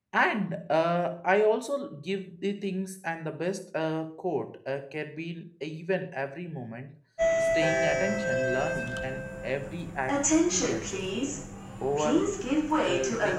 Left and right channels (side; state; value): both; identical; correlation 1.00